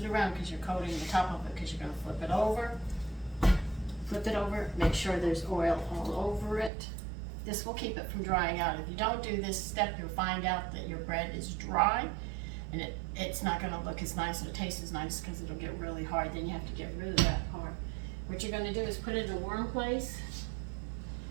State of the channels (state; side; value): drops out; left; at 6.7 s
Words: around because you're coating the top of it, because you're going to flip it over. Flip it over, make sure there's oil all over it. This will keep it from drying out. If you don't do this step, you'll find out that your bread is dry, and it's not going to look as nice or taste as nice, because it'll get really hard. Then you have to get rid of that part. What you're going to do is put it in a warm place,